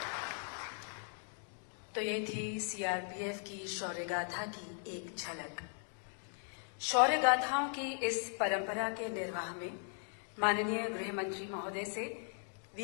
तो ये थी सीआरपीएफ की शौर्य गाथा की एक झलक। शौर्य गाथाओं की इस परंपरा के निर्वाह में माननीय गृह मंत्री महोदय से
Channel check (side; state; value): right; silent; 52 dB below the other